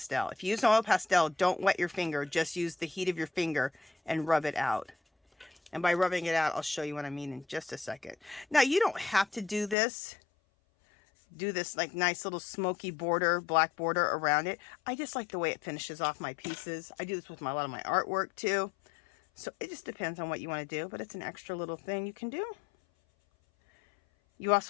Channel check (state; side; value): drops out; right; at 9.8 s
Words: If you use an oil pastel, don't wet your finger. Just use the heat of your finger and rub it out. And by rubbing it out, I'll show you what I mean in just a second. Now, you don't have to do this. Do this like nice little smoky border, black border around it. I just like the way it finishes off my pieces. I do this with a lot of my artwork too. So it just depends on what you want to do, but it's an extra little thing you can do. You